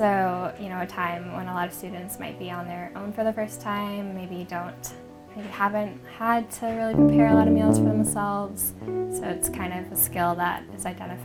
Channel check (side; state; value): both; identical; correlation 1.00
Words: a time when a lot of students might be on their own for the first time, maybe haven't had to really prepare a lot of meals for themselves. So it's kind of a skill that is